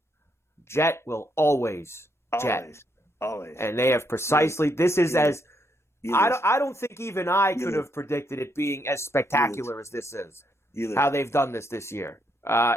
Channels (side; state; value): both; normal; correlation 0.76